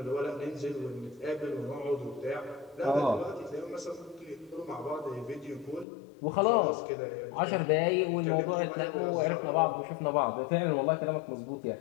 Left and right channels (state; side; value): drops out; right; at 5.9 s